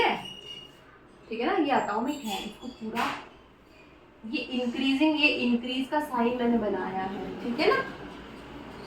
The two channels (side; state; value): both; identical; correlation 1.00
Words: है, ठीक है ना। ये एटॉमिक है, इसको पूरा ये इंक्रीजिंग, ये इंक्रीज का साइन मैंने बनाया है, ठीक है ना।